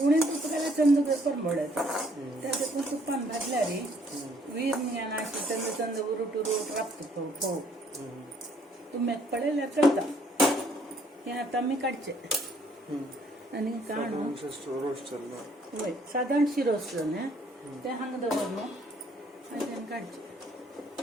उणे तूप घाल्यार चंद परमळ्यात त्या देखून तुपान भाजल्यार वीर अशी चंद चंद उरूट उरूट राबता फोव तुमक पडल्यार करता हे आता आमी काडचे आनी काडून वय साधारण शिरोस जालें ते हांगा दवरलो आनी काडचे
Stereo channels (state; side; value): normal; both; correlation 0.64